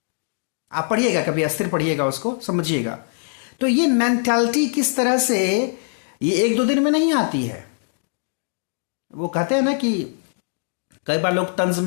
आप पढ़िएगा कभी, अस्थिर पढ़िएगा, उसको समझिएगा। तो ये मेंटालिटी किस तरह से, ये एक दो दिन में नहीं आती है। वो कहते हैं ना कि कई बार लोग तंज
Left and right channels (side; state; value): right; silent; 64 dB below the other